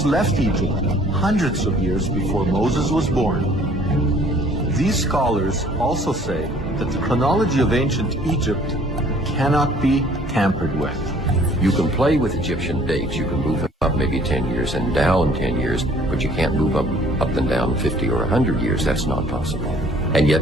left Egypt hundreds of years before Moses was born. These scholars also say that the chronology of ancient Egypt cannot be tampered with. You can play with Egyptian dates. You can move up maybe 10 years and down 10 years, but you can't move up and down 50 or 100 years. That's not possible. And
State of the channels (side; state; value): both; normal; correlation 0.56